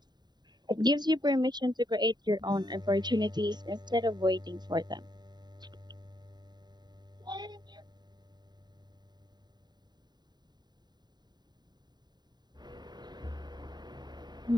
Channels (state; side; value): late; left; 0.20 ms